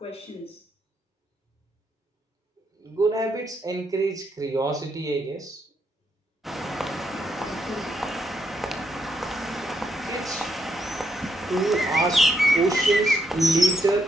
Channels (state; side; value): normal; both; correlation 0.78